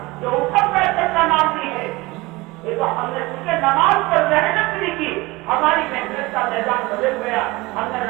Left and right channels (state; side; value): quieter; left; 22.2 dB